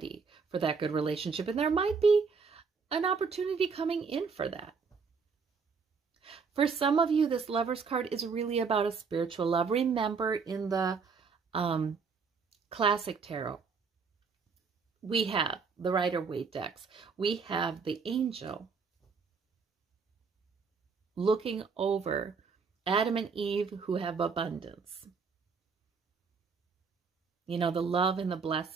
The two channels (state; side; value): quieter; left; 5.3 dB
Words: for that good relationship. And there might be an opportunity coming in for that. For some of you, this Lover's card is really about a spiritual love. Remember, in the classic tarot, we have the Rider-Waite decks. We have the angel looking over Adam and Eve who have abundance. You know, the love and the